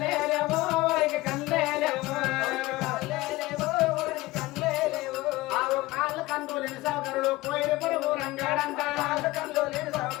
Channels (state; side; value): quieter; right; 19.5 dB